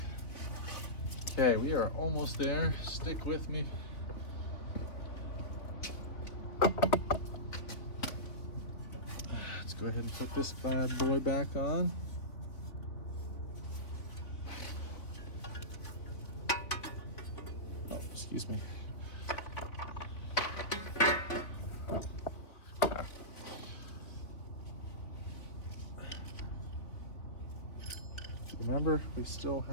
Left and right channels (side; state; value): right; late; 3.7 ms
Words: Okay, we are almost there. Stick with me. Let's go ahead and put this bad boy back on. Oh, excuse me. Remember, we still